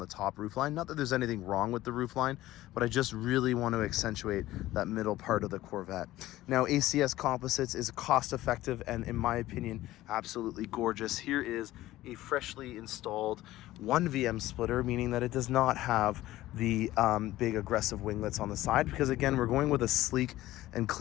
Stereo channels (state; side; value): quieter; right; 15.9 dB